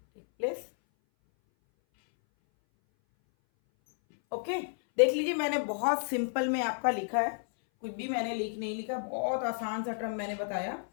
take place। Okay देख लीजिए, मैंने बहुत simple में आपका लिखा है, कुछ भी मैंने नहीं लिखा, बहुत आसान सा टर्म मैंने बताया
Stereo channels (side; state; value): right; silent; 57 dB below the other